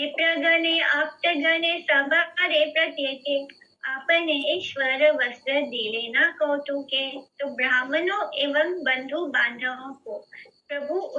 आप्तगणे सबारे प्रत्येके, आपने ईश्वर वस्त्र दिले न कौतुके। तो ब्राह्मणों एवं बंधु बांधवों को प्रभु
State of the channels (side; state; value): both; identical; correlation 1.00